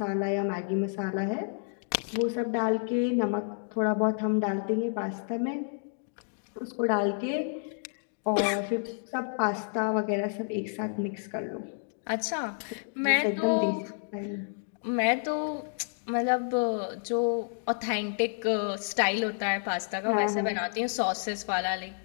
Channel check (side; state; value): right; silent; digital silence